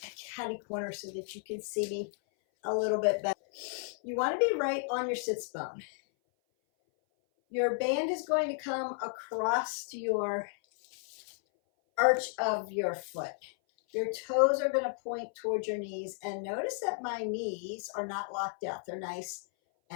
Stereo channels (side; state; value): right; silent; 56 dB below the other